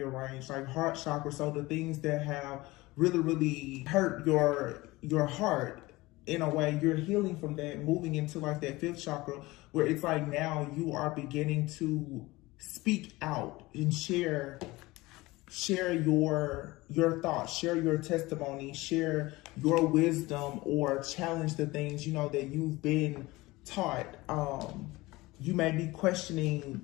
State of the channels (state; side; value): quieter; right; 20.6 dB